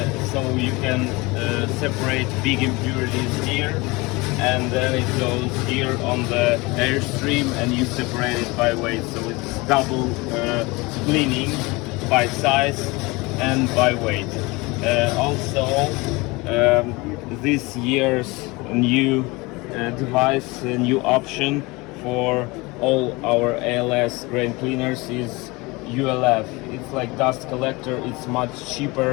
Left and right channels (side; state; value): right; quieter; 24.2 dB